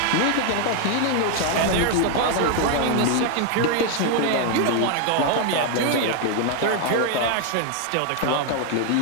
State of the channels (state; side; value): different; both; correlation 0.00